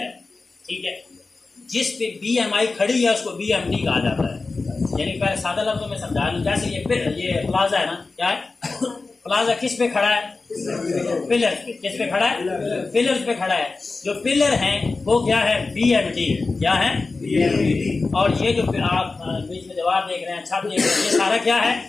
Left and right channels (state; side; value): quieter; right; 3.8 dB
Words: ठीक है, जिस पे BMI खड़ी है उसको BMD कहा जाता है। यानी पहले सादा लफ्जों में समझा लूं, जैसे ये प्लाजा है ना, क्या है? प्लाजा किस पे खड़ा है? पिलर्स पे। किस पे खड़ा है? पिलर्स पे खड़ा है। जो पिलर हैं वो क्या है? BMD। क्या है? BMD। और ये जो आप बीच में दीवार देख रहे हैं, छत देख रहे हैं, ये सारा क्या